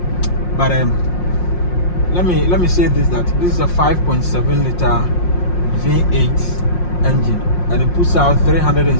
but let me say this, that this is a 5.7 liter V8 engine, and it puts out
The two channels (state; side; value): late; right; 5.6 ms